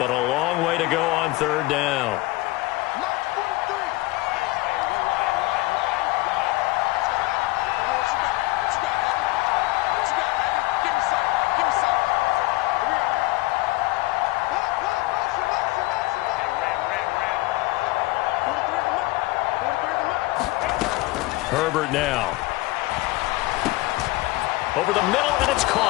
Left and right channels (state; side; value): quieter; right; 20.8 dB